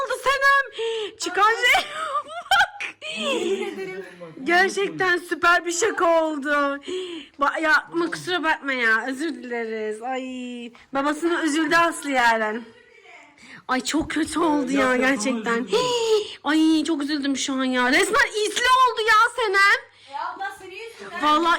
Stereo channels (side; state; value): both; identical; correlation 1.00